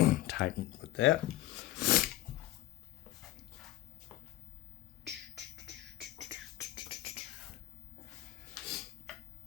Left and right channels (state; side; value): quieter; right; 16.0 dB